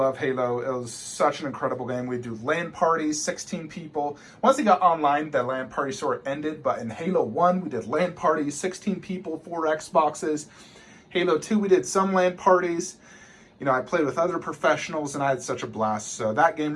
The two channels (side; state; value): both; identical; correlation 1.00